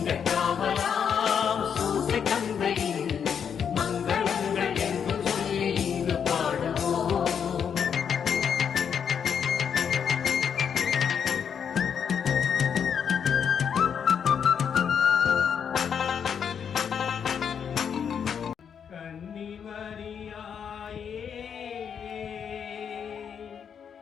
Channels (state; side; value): quieter; right; 7.5 dB